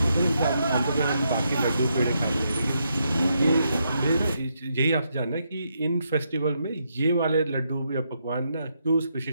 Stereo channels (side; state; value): both; inverted; correlation -0.79